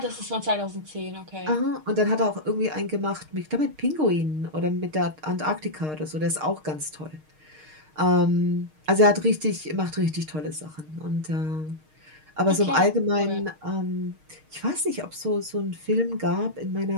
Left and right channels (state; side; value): late; left; 6.5 ms